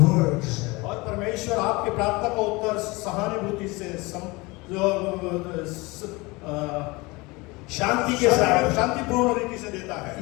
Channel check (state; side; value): quieter; right; 24.0 dB